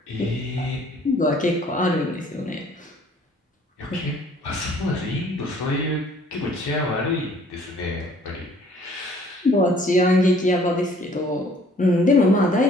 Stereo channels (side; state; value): both; normal; correlation 0.57